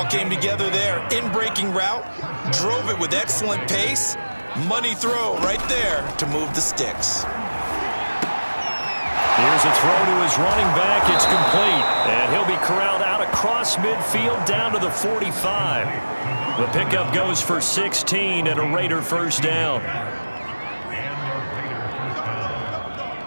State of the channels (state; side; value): inverted; both; correlation -1.00